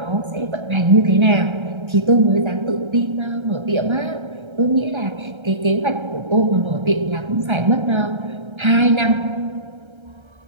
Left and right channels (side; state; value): left; late; 1.3 ms